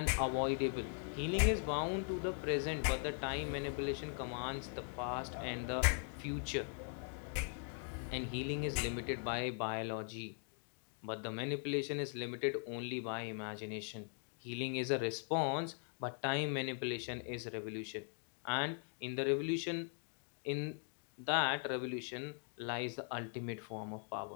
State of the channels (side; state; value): right; silent; 51 dB below the other